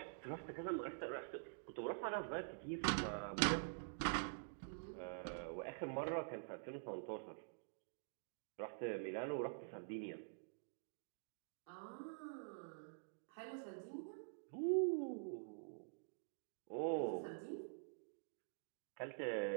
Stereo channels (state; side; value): silent; left; digital silence